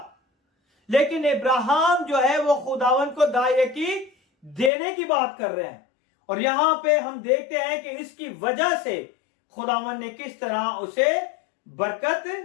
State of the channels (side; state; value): right; drops out; at 4.7 s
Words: लेकिन इब्राहिम जो है वो खुदावन को दायकी देने की बात कर रहे हैं। और यहां पे हम देखते हैं कि इसकी वजह से खुदावन ने किस तरह उसे बरकत